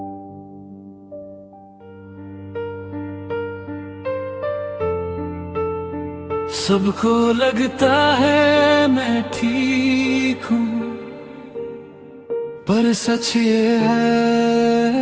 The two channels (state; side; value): identical; both; correlation 1.00